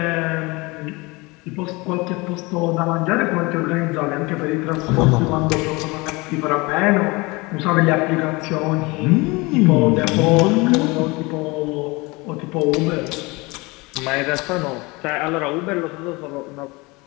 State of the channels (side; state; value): right; quieter; 24.8 dB